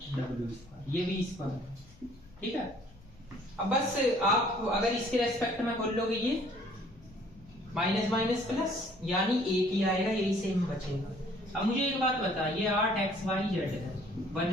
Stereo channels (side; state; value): left; noise; rumble, 24 dB below the sound